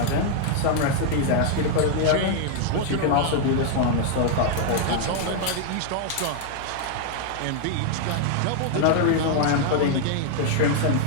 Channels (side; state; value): both; different; correlation 0.00